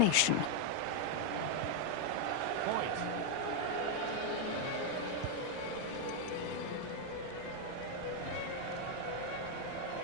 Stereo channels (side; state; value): both; different; correlation 0.00